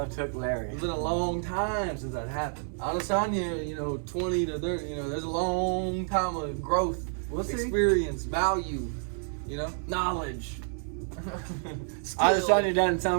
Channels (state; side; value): silent; left; 58 dB below the other